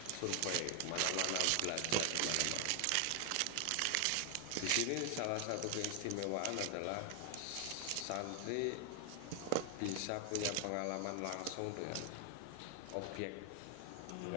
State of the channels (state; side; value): different; both; correlation 0.00